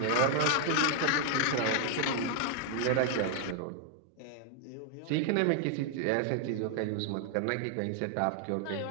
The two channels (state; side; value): different; both; correlation 0.00